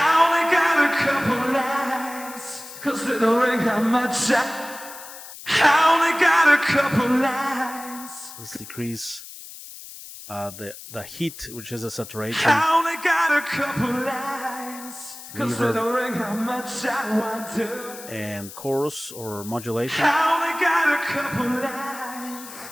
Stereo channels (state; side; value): noise; left; hiss, 14 dB below the sound